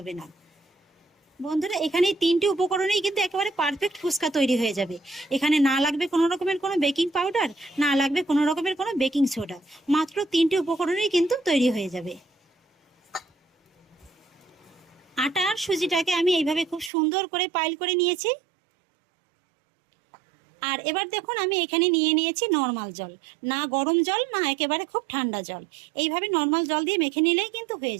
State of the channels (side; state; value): left; drops out; at 16.9 s